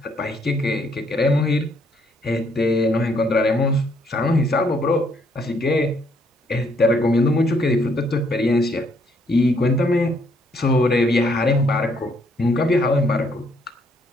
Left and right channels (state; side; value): normal; both; correlation 0.69